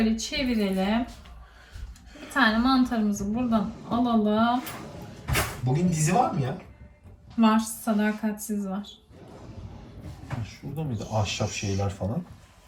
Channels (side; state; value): both; identical; correlation 1.00